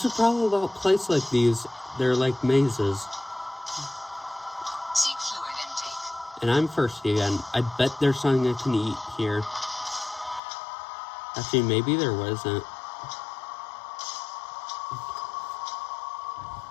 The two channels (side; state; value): right; drops out; at 10.4 s